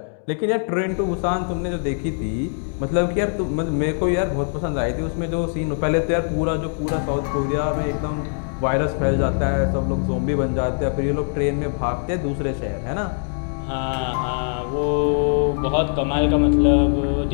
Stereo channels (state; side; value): silent; right; 64 dB below the other